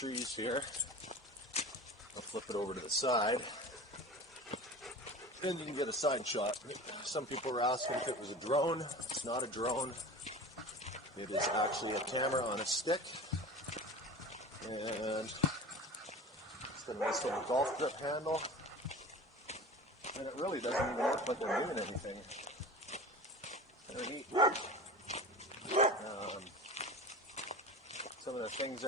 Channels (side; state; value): both; normal; correlation 0.35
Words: here, I'll flip it over to the side, and you can get a side shot. Some people were asking if it was a drone. It's not a drone. It is actually a camera on a stick, and a nice little golf grip handle, and it really doesn't even look like I'm doing anything. Very neat. Some of the things